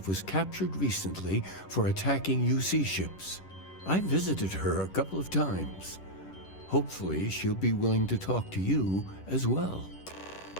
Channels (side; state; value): right; late; 10 ms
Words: was captured recently for attacking UC ships. I visited her a couple of times. Hopefully, she'll be willing to talk to you as well.